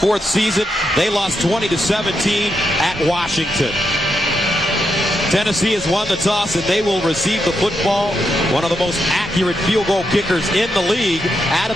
season. They lost 20-17 at Washington. Tennessee has won the toss, and they will receive the football. One of the most accurate field goal kickers in the league,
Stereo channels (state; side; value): normal; both; correlation 0.83